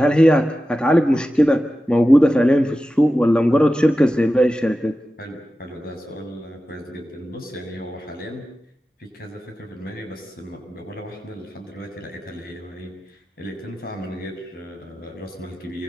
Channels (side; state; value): both; normal; correlation 0.93